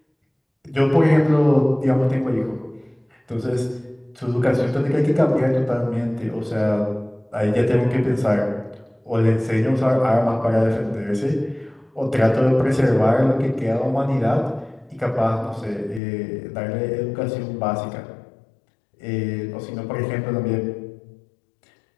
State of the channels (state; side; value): drops out; right; at 16.0 s